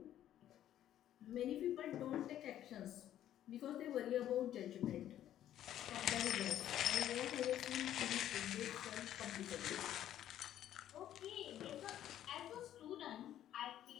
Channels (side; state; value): right; quieter; 11.7 dB